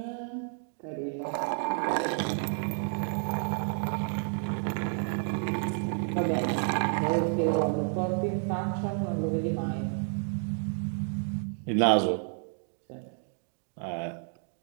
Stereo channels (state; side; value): silent; left; 57 dB below the other